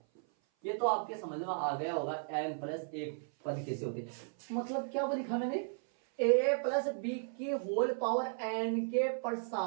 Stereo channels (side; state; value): left; silent; 54 dB below the other